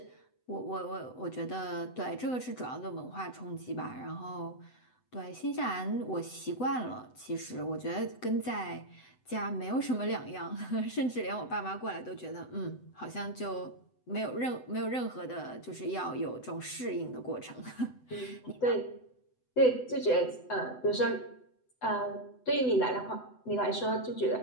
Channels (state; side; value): late; right; 7.9 ms